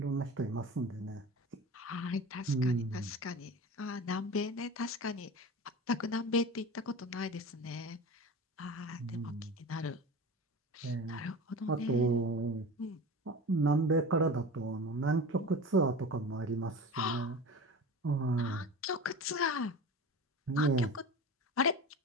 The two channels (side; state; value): both; normal; correlation 0.33